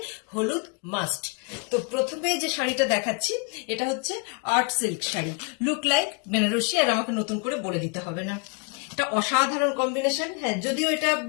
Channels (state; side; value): quieter; right; 33.1 dB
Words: হলুদ মাস্ট। তো প্রথমে যে শাড়িটা দেখাচ্ছি এটা হচ্ছে art silk sari, look like Benarasi. আর আমাকে নতুন করে বলে দিতে হবে না, এটা অসাধারণ কম্বিনেশন। হ্যাঁ, যদিও এটা